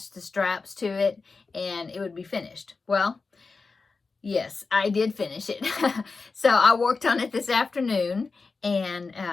the straps to it, and it would be finished. Well, yes, I did finish it. So I worked on it this afternoon, and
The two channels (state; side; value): quieter; right; 4.3 dB